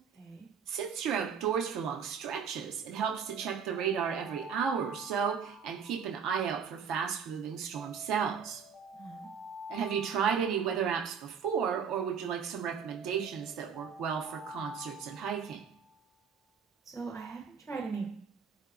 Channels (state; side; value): quieter; left; 6.8 dB